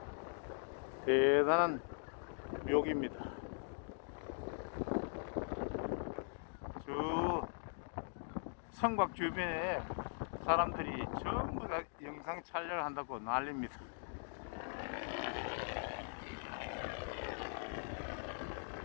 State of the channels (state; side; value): silent; right; digital silence